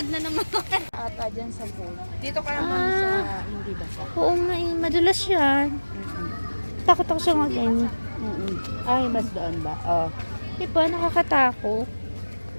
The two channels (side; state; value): both; inverted; correlation -1.00